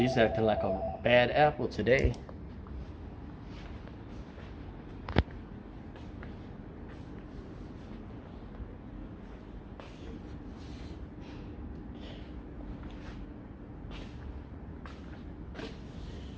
acting like a bad apple today.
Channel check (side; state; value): both; identical; correlation 1.00